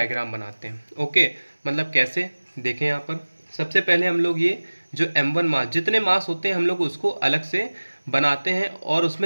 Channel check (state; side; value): inverted; both; correlation -1.00